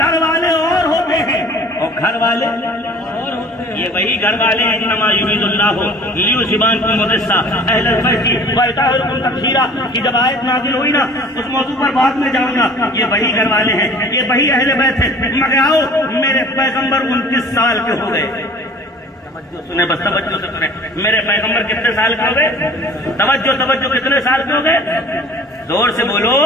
والے اور ہوتے ہیں اور گھر والے اور ہوتے ہیں. یہ وہی گھر والے ہیں انما یرید اللہ لیذھبن عنکم الرجس اہل البیت ویطہرکم تطہیرا کی جب آیت نازل ہوئی نا, اس موضوع پر بعد میں جاؤں گا. یہ وہی گھر والے ہیں, یہ وہی اہل بیت ہیں. مگر آؤ, میرے پیغمبر 29 سال کے ہو گئے. سنیں, بس توجہ سے سنیں, میرے پیغمبر کتنے سال کے ہو گئے؟ توجہ کتنے سال کے ہو گئے؟ زور سے بولو.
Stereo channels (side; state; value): both; normal; correlation 0.48